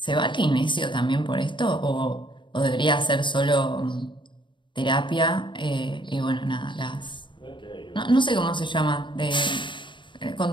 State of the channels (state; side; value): late; right; 0.23 ms